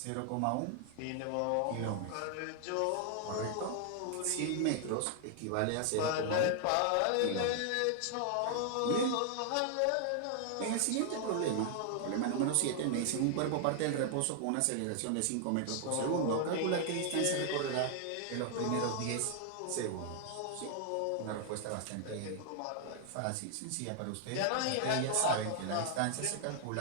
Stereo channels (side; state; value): both; different; correlation 0.00